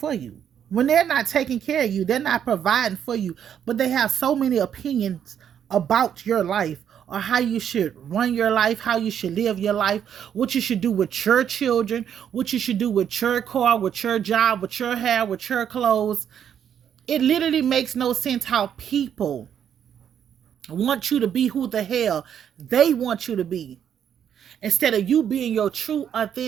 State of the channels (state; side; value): quieter; left; 8.9 dB